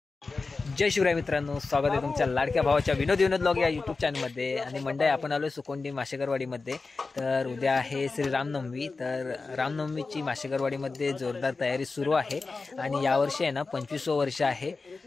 जय शिवराय मित्रांनो, स्वागत आहे तुमच्या लाडक्या भावाच्या विनोद ब्लॉग या यूट्यूब चॅनलमध्ये। आणि मंडळी, आपण आलो सुकोंडी माशेकरवाडीमध्ये। तर उद्या आहे श्री रामनवमी। तर रामनवमीची माशेकरवाडीमध्ये जोरदार तयारी सुरू आहे। आणि यावर्षी आहे ना 25वं वर्ष आहे।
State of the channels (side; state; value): right; quieter; 4.0 dB